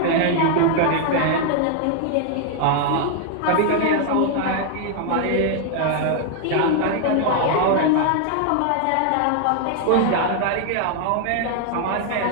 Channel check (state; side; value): different; both; correlation 0.00